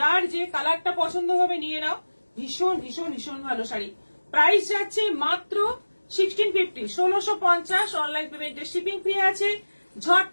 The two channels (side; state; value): both; inverted; correlation -1.00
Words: যে কালারটা পছন্দ হবে নিয়ে নাও। ভীষণ ভীষণ ভীষণ ভালো শাড়ি। প্রাইস যাচ্ছে মাত্র 1650, 1650। অনলাইন পেমেন্টে শিপিং ফ্রি আছে।